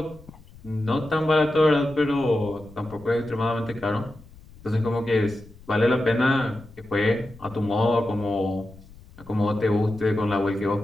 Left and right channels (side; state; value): left; noise; rumble, 22 dB below the sound